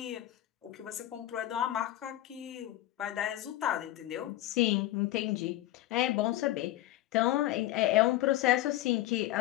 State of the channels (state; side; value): quieter; right; 15.0 dB